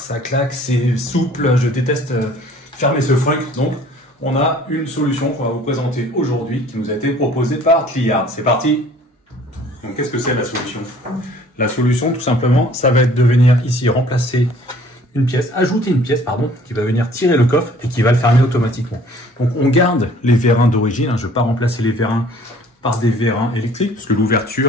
claque, c'est souple, je déteste fermer ce frunk. Donc on a une solution qu'on va vous présenter aujourd'hui qui nous a été proposée par Cliard. C'est parti. Donc qu'est-ce que c'est la solution? La solution, tout simplement, ça va être de venir ici remplacer une pièce, ajouter une pièce, pardon, qui va venir tirer le coffre et qui va le fermer automatiquement. Donc on garde les vérins d'origine, je ne vais pas remplacer les vérins par des vérins électriques, parce que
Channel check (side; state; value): both; normal; correlation 0.54